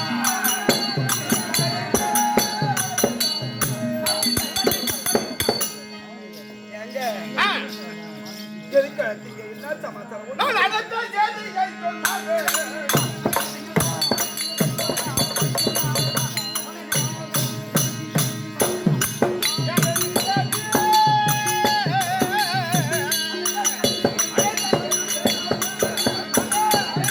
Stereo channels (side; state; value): both; identical; correlation 1.00